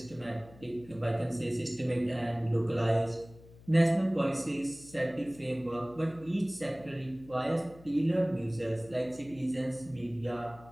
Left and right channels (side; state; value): left; noise; hum, 22 dB below the sound